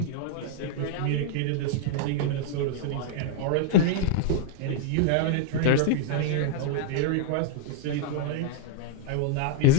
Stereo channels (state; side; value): different; both; correlation -0.01